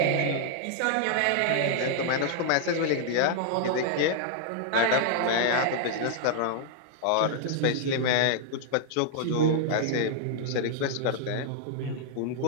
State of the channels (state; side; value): different; both; correlation -0.01